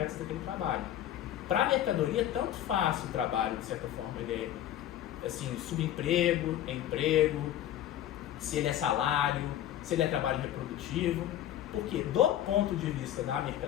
daquele trabalho. Para a mercadoria, tanto faz o trabalho, de certa forma, ele é assim, subemprego, emprego, se ele é salário, se ele é trabalho reprodutivo, porque do ponto de vista da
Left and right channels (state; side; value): quieter; right; 11.8 dB